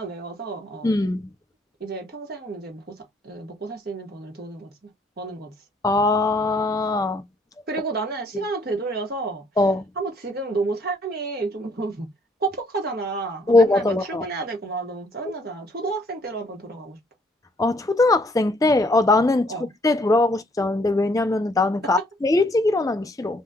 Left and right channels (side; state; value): both; normal; correlation 0.65